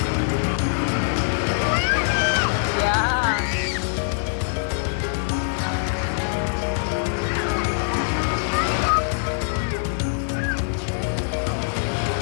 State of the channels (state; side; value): silent; right; digital silence